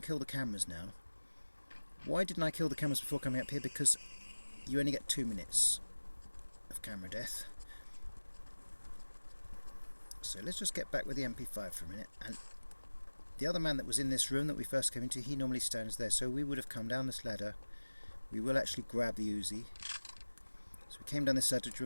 kill the cameras now. Why didn't I kill the cameras before coming up here? Because you only get 2 minutes of camera death. So let's just get back with the MP5 for a minute. And the other man that was in this room that we first came into, he normally stands there. So we would have come down this ladder. We will actually grab the Uzi. So we came down this ladder,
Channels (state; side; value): inverted; both; correlation -1.00